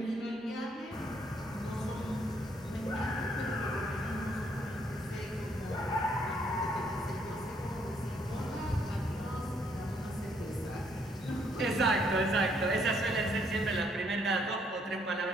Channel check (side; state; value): both; normal; correlation 0.69